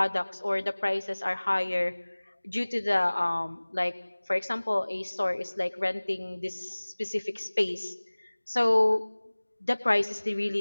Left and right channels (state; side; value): inverted; both; correlation -1.00